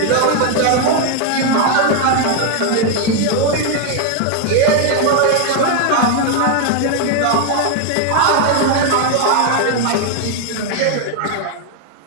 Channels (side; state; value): both; different; correlation 0.01